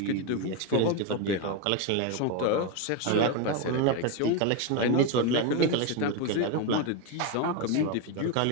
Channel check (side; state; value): both; different; correlation 0.03